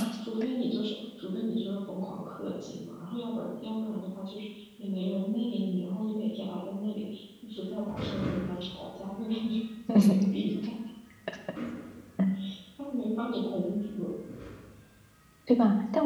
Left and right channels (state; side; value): identical; both; correlation 1.00